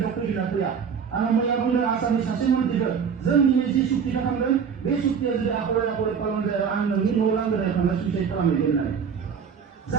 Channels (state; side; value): quieter; left; 6.7 dB